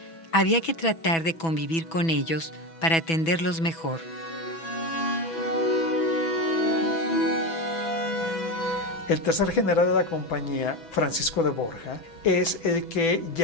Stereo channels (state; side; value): late; right; 6.1 ms